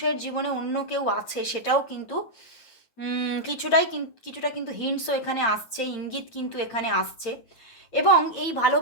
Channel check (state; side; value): late; right; 8.9 ms